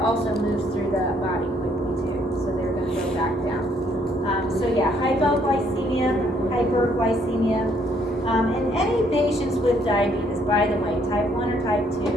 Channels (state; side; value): normal; both; correlation 0.68